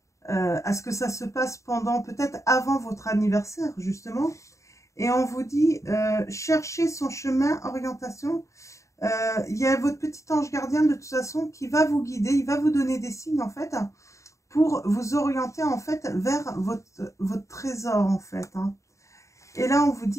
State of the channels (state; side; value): late; right; 0.15 ms